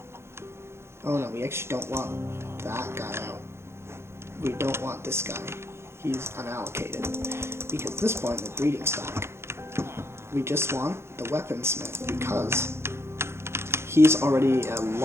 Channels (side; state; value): left; late; 0.12 ms